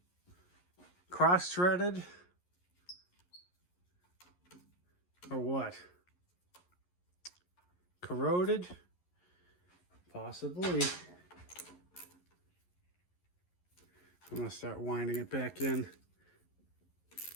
Cross-threaded? Or what? Corroded? Possibly. I'm going to start winding it back in.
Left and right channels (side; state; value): right; late; 11 ms